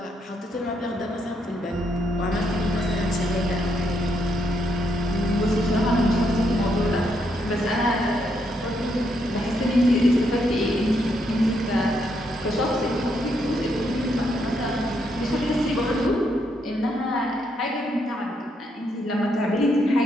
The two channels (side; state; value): both; normal; correlation 0.76